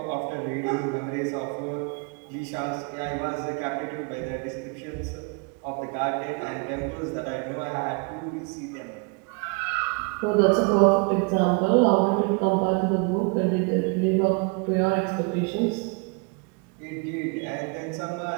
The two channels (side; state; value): left; quieter; 33.8 dB